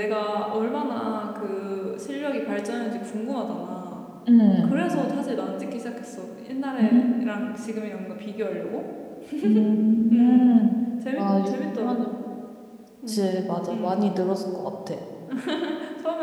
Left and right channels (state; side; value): identical; both; correlation 1.00